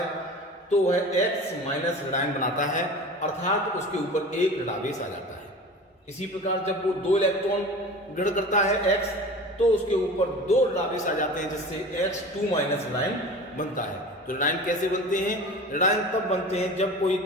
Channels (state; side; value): normal; both; correlation 0.36